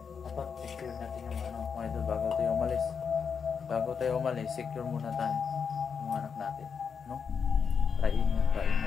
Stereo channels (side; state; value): right; quieter; 6.3 dB